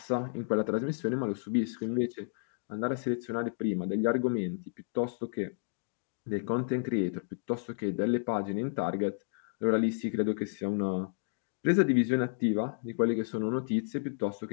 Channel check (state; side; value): silent; right; digital silence